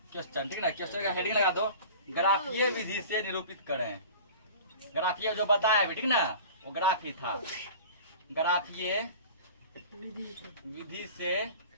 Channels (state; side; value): inverted; both; correlation -0.40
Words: क्वेश्चन, ठीक ना। क्वेश्चन का हेडिंग लगा दो, ग्राफीय विधि से निरूपित करें। ग्राफीय जो बताया भी, ठीक ना, वो ग्राफ ही था। ग्राफीय विधि से